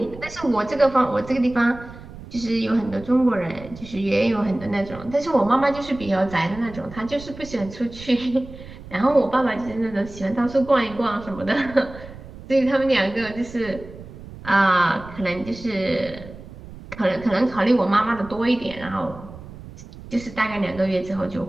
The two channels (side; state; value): right; noise; rumble, 16 dB below the sound